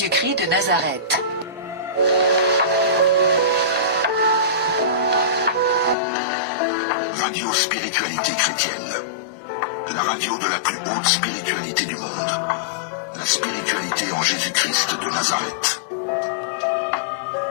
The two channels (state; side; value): drops out; right; at 6.0 s